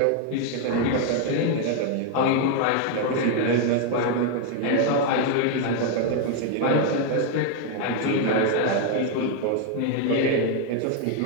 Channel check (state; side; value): different; both; correlation 0.01